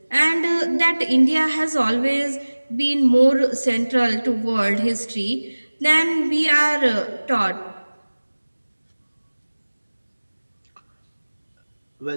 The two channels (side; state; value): both; inverted; correlation -1.00